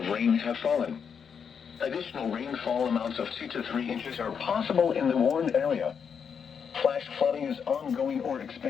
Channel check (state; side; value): quieter; right; 6.9 dB